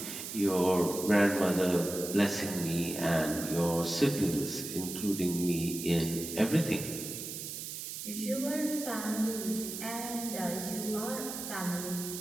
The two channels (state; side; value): noise; right; hiss, 7 dB below the sound